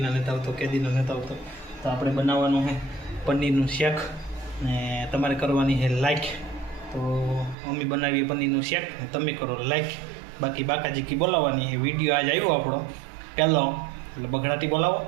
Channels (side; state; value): left; drops out; at 7.6 s